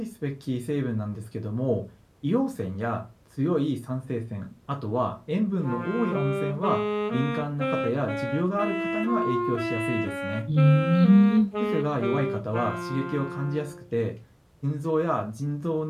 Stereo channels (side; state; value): both; identical; correlation 1.00